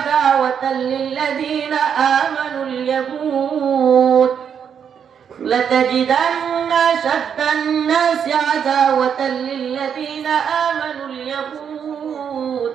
লিল্লাযীনা আমানুল ইয়াহুদ, লাতাজিদান্না শাদ্দান নাসি আদাওয়াতাল লিল্লাযীনা আমানুল ইয়াহুদ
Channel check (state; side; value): quieter; left; 7.7 dB